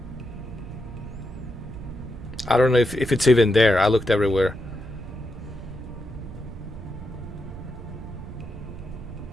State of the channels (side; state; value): right; noise; rumble, 12 dB below the sound